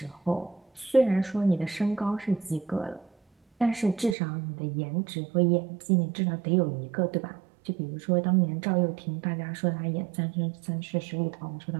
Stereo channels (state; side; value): drops out; left; at 4.2 s